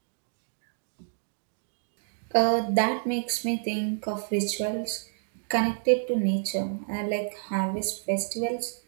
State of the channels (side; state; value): left; silent; digital silence